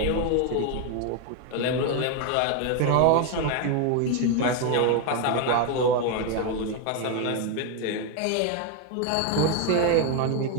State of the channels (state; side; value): different; both; correlation 0.01